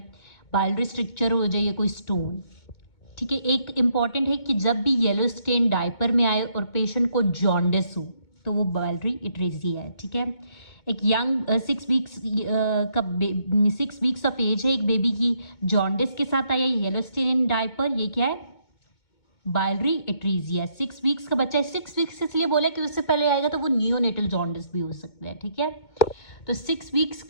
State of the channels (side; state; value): right; late; 2.2 ms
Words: बाइलरी स्ट्रक्चर हो जाए या कोई स्टोन, ठीक है। एक इम्पॉर्टेंट है कि जब भी येलो स्टेन डायपर में आए और पेशेंट को जॉन्डिस हो तो वो बाइलरी इट्रेसिया है, ठीक है। एक यंग 6 वीक्स का 6 वीक्स ऑफ एज है एक बेबी की, जॉन्डिस के साथ आया येलो स्टेन इन डायपर, ये क्या है, बाइलरी इट्रेसिया। 6 वीक्स का बच्चा है, 6 वीक्स इसलिए बोला कि उससे पहले आएगा तो वो नियोनेटल जॉन्डिस भी हो सकता है, ठीक है। तो 6 वीक्स